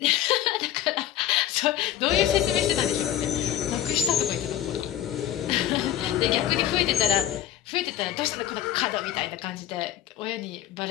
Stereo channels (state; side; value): quieter; right; 11.7 dB